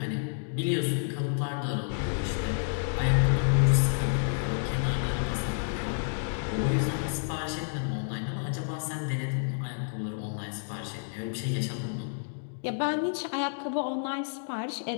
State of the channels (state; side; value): silent; right; digital silence